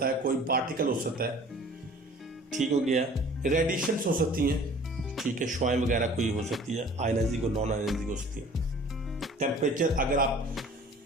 है, कोई पार्टिकल हो सकता है, ठीक हो गया। रेडिएशन हो सकती हैं, ठीक है, शुआएं वगैरह कोई हो सकती है, आयनाइजिंग और नॉन आयनाइजिंग हो सकती है। टेम्परेचर, अगर आप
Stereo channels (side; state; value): both; normal; correlation 0.49